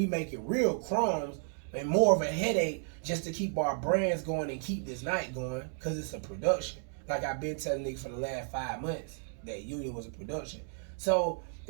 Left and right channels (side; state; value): left; silent; 56 dB below the other